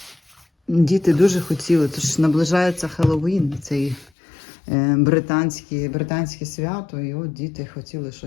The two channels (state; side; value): drops out; right; at 4.1 s